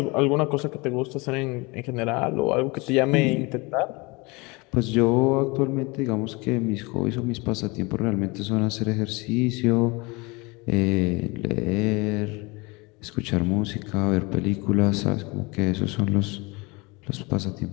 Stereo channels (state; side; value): quieter; right; 26.2 dB